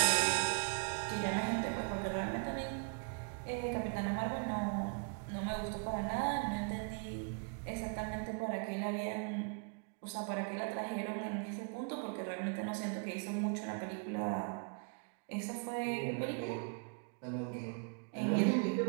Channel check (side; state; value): left; quieter; 39.6 dB